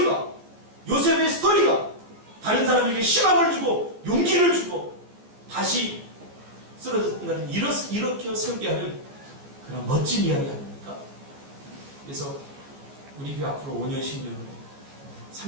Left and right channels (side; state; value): left; late; 14 ms